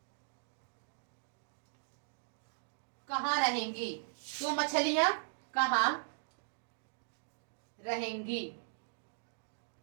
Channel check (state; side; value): silent; left; digital silence